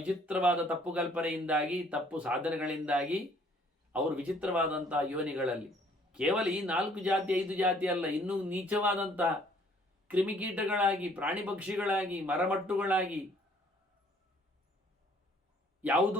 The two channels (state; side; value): normal; both; correlation 0.60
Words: ತಪ್ಪು ಕಲ್ಪನೆಯಿಂದಾಗಿ, ತಪ್ಪು ಸಾಧನೆಗಳಿಂದಾಗಿ ಅವರು ವಿಚಿತ್ರವಾದಂತಹ ಯೋನಿಗಳಲ್ಲಿ, ಕೇವಲ ಈ 4 ಜಾತಿ 5 ಜಾತಿ ಅಲ್ಲ, ಇನ್ನೂ ನೀಚವಾದಂತಹ ಕ್ರಿಮಿಕೀಟಗಳಾಗಿ, ಪ್ರಾಣಿ ಪಕ್ಷಿಗಳಾಗಿ, ಮರಮಟ್ಟುಗಳಾಗಿ,